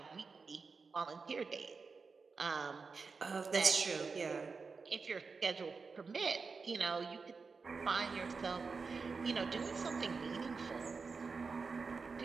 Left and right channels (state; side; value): quieter; left; 4.7 dB